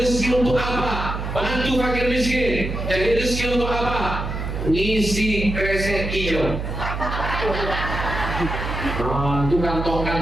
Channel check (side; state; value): right; noise; hum, 4 dB below the sound